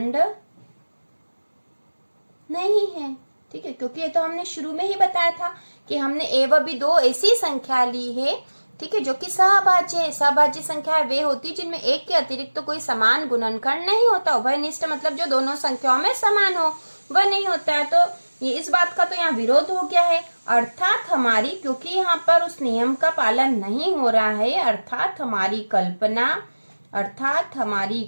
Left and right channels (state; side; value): inverted; both; correlation -1.00